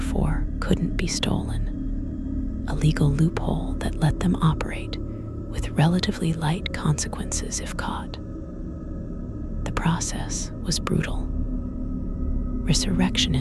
couldn't be stolen, a legal loophole that let them operate with relatively light consequences if caught. The process was brutal.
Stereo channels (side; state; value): both; identical; correlation 1.00